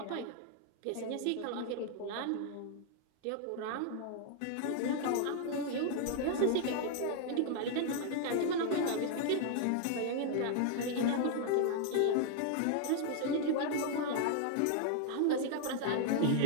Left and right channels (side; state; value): both; different; correlation 0.00